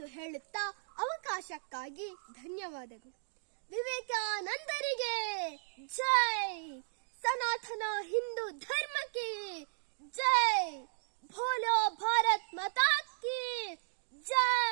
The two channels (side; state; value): left; silent; digital silence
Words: ಹೇಳುತ್ತಾ ಅವಕಾಶಕ್ಕಾಗಿ ಧನ್ಯವಾದಗಳು. ವಿವೇಕಾನಂದರಿಗೆ